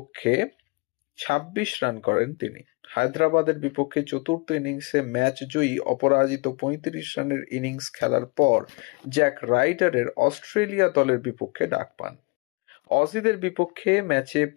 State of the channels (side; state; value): right; quieter; 29.5 dB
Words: 26 রান করেন তিনি। হায়দ্রাবাদের বিপক্ষে চতুর্থ ইনিংসে ম্যাচ জয়ী অপরাজিত 35 রানের ইনিংস খেলার পর জ্যাক রাইডারের অস্ট্রেলিয়া দলের বিপক্ষে ডাক পান। অজিদের বিপক্ষে ম্যাচে